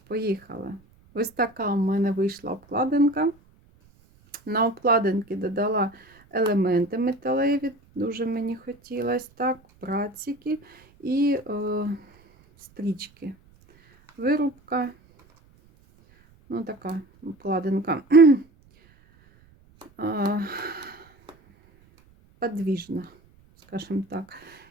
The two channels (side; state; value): right; noise; rumble, 30 dB below the sound